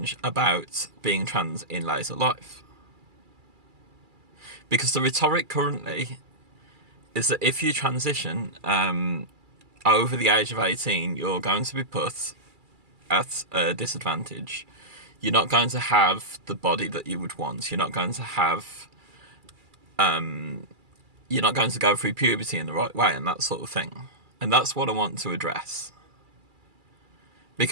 about being trans in later life. Because the rhetoric currently is that if you transition over the age of 18, you're going to be put at a disadvantage. You're not going to have the body that you would want. You're not going to have... you're not going to go through puberty in the right way and that sort of thing. And that's what I want to address.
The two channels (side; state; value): left; late; 2.3 ms